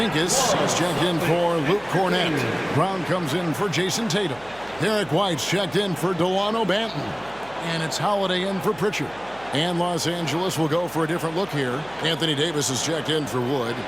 is checked in for Luke Cornette. Brown comes in for Jason Tatum. Derek White's checked in for Delano Banton. And it's Holiday in for Pritchard. And Los Angeles will go for a different look here. Anthony Davis is checked in for Wood.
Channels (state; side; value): noise; right; hum, 24 dB below the sound